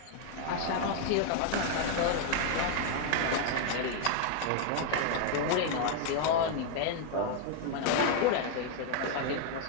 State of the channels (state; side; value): different; both; correlation 0.00